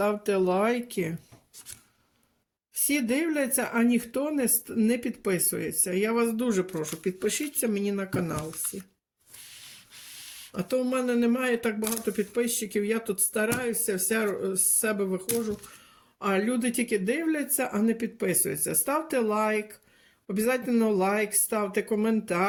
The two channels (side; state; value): both; identical; correlation 1.00